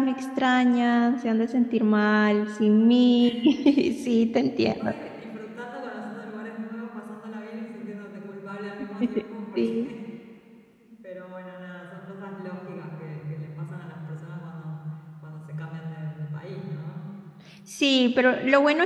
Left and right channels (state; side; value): identical; both; correlation 1.00